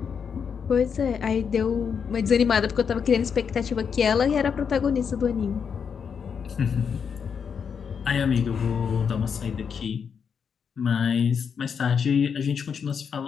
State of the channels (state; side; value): quieter; right; 6.7 dB